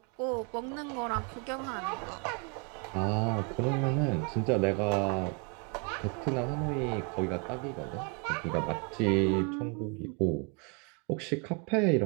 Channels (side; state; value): left; quieter; 34.5 dB